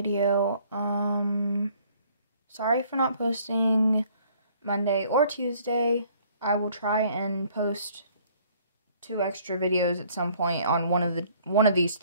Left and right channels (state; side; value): inverted; both; correlation -0.59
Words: Sorry for not posting Monday or Tuesday. I will try and post 2 extra videos at some point on one of these